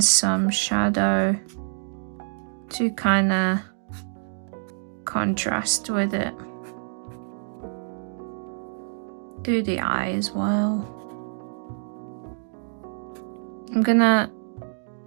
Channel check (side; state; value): left; silent; digital silence